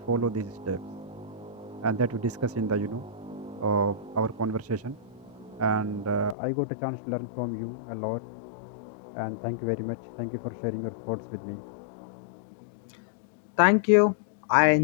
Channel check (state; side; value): drops out; right; at 6.4 s